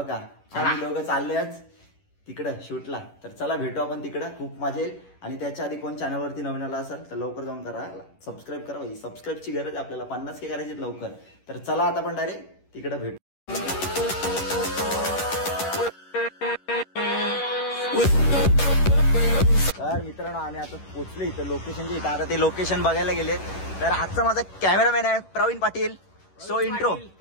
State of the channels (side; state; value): right; late; 11 ms